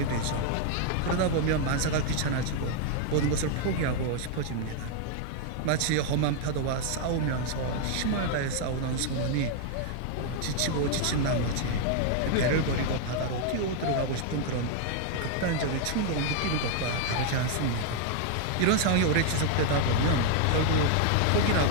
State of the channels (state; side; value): different; both; correlation 0.00